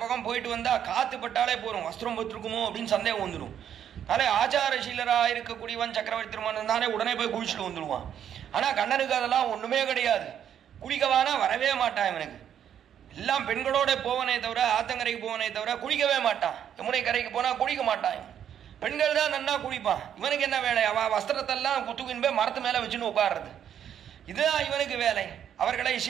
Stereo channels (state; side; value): quieter; left; 9.4 dB